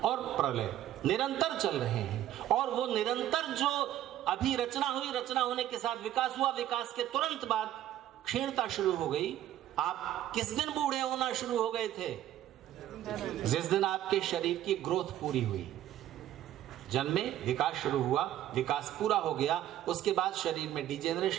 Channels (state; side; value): quieter; left; 12.5 dB